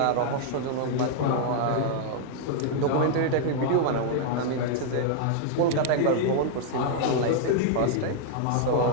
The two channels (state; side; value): different; both; correlation -0.01